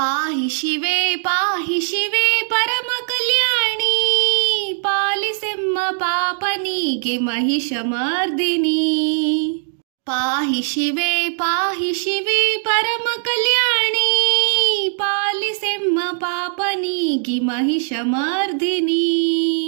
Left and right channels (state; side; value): silent; left; digital silence